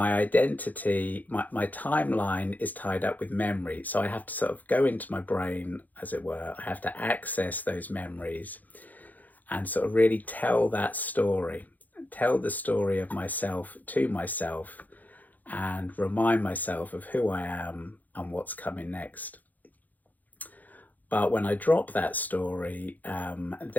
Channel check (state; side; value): late; right; 0.082 ms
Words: identity, my timeline is tied up with memory. So I have to sort of go into my brain, as it were. I have to access those memories and sort of really tell that story, tell the story of myself to myself, and remind myself of who I am and what's coming next. But when I drop that story,